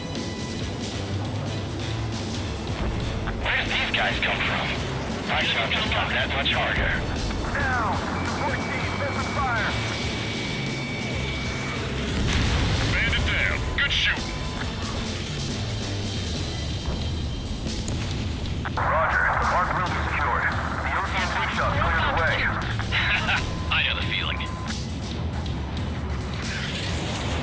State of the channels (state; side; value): identical; both; correlation 1.00